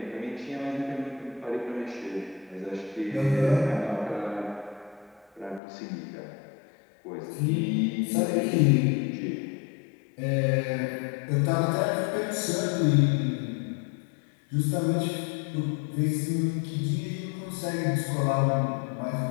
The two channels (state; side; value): drops out; right; at 5.6 s